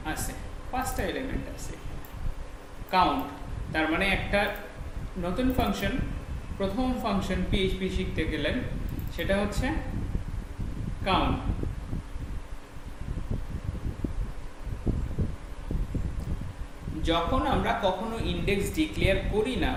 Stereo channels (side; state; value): both; identical; correlation 1.00